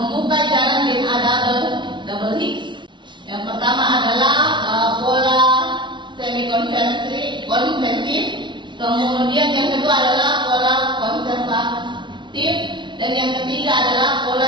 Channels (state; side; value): late; left; 0.23 ms